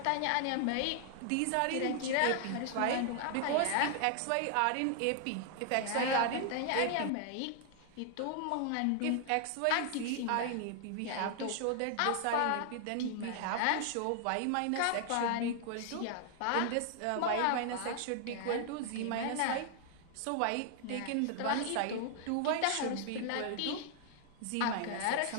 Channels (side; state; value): both; different; correlation 0.00